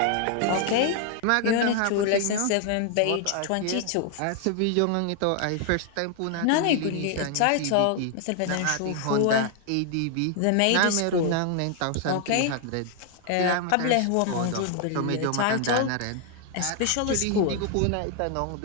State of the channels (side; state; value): both; different; correlation 0.00